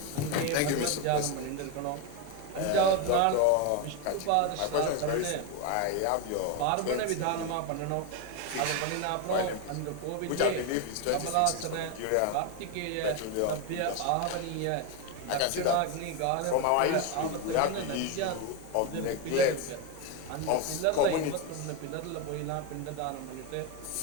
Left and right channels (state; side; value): different; both; correlation 0.02